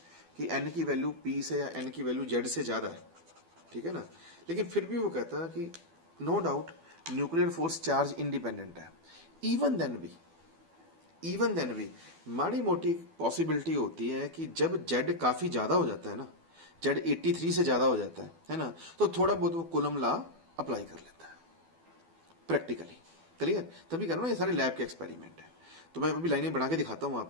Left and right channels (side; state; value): left; late; 12 ms